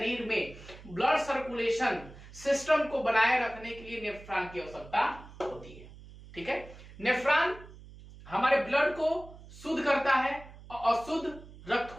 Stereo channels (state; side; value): noise; right; hum, 18 dB below the sound